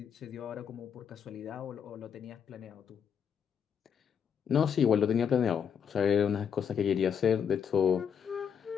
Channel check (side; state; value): right; quieter; 7.6 dB